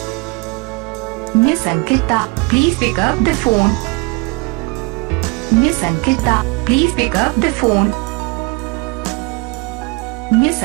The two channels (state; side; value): quieter; left; 27.0 dB